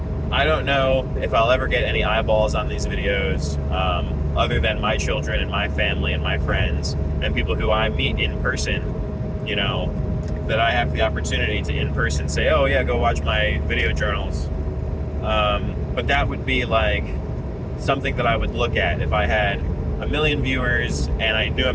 I don't know if I'll ever get any eyeballs on these videos, other than my children and my family and my friends and people who I meet in person, that I have the opportunity to in person say, oh yeah, go watch my video journals. But that would be like something that I would look at if I had 1 million viewers and I knew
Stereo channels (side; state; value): both; identical; correlation 1.00